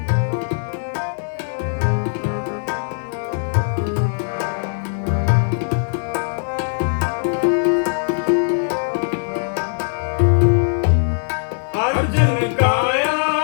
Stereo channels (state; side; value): silent; right; digital silence